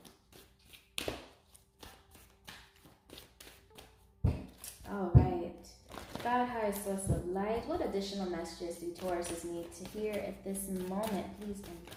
All right. God, highest source of light, what additional messages do Tauruses need to hear at this moment? Please and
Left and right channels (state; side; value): identical; both; correlation 1.00